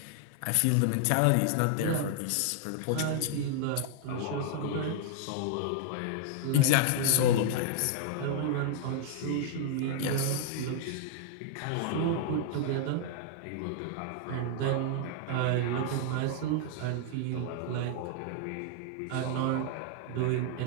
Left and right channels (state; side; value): different; both; correlation -0.01